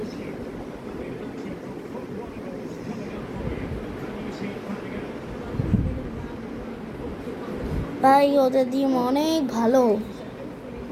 ভাই ওদের টিম অনেক ভালো।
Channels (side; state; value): both; identical; correlation 1.00